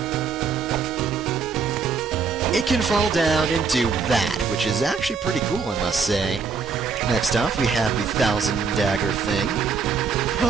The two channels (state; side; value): quieter; left; 5.3 dB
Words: it can fall down and do that, which is actually pretty cool, I must say. Next off, we have the 1000 Dagger thing.